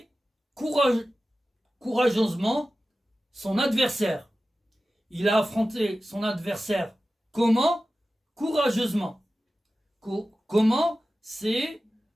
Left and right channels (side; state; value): both; normal; correlation 0.95